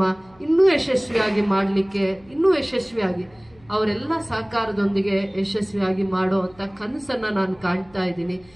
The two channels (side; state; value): left; noise; hum, 29 dB below the sound